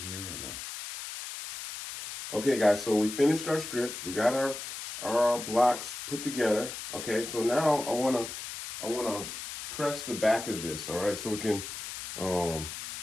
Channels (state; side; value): noise; left; hiss, 8 dB below the sound